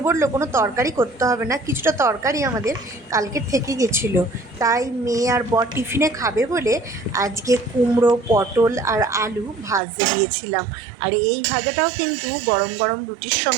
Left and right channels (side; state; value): left; drops out; at 9.8 s